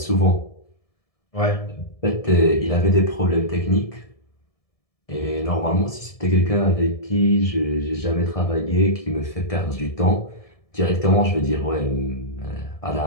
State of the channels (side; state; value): right; late; 1.7 ms